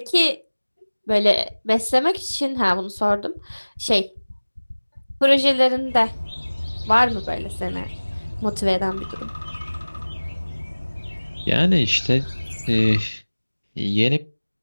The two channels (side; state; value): both; inverted; correlation -1.00